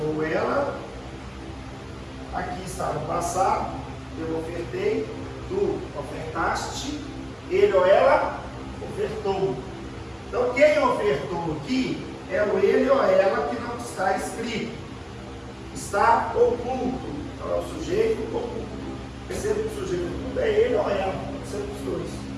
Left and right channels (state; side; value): identical; both; correlation 1.00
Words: ela. Aqui está no passado. Eu ofertei, tu ofertaste, ele ou ela ofertou. Então, quem ofertou aqui é o ele ou ela que não está escrito. Está oculto. Então, é o sujeito oculto. Perceba que o sujeito oculto é ele ou ela, pode ser os dois.